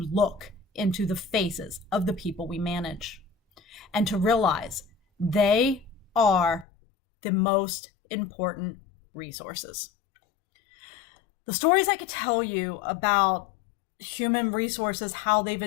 into the faces of the people we manage and to realize they are the most important resources. The stories I could tell you about human resources, how they've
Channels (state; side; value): drops out; right; at 6.7 s